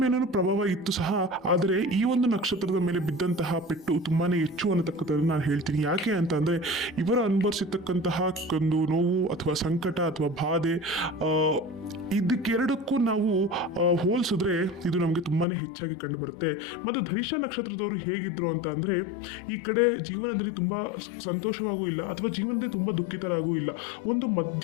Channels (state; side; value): drops out; right; at 15.5 s